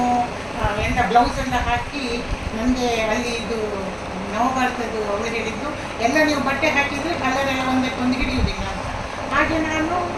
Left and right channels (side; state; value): both; identical; correlation 1.00